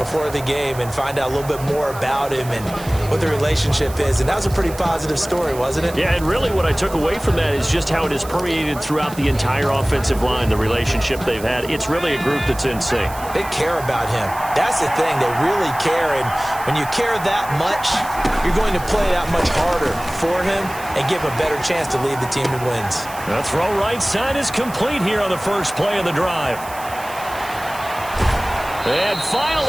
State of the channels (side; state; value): right; noise; hiss, 16 dB below the sound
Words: the game and find out a little bit more about him and what the relationship is. And that was a pretty positive story, wasn't it? Yeah, and really what I took away from that is just how it has permeated throughout the entire offensive line, the relationship they've had. It's really a group that's in sync. They care about him. That's the thing. They really care. And when you care that much, you're going to play that much harder for him and give him a better chance to lead the team to wins. The throw right side is complete here on the first play of the drive. And